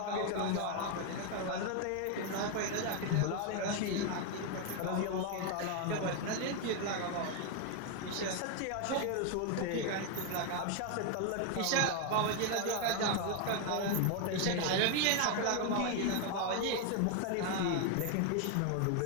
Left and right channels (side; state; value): both; different; correlation 0.01